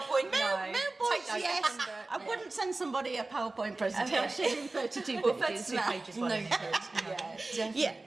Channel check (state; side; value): quieter; left; 3.1 dB